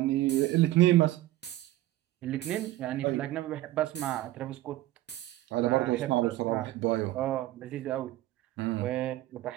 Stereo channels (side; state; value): left; quieter; 15.7 dB